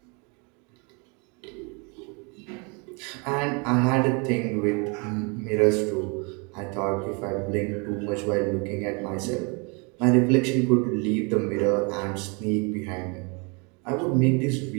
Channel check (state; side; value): quieter; left; 32.4 dB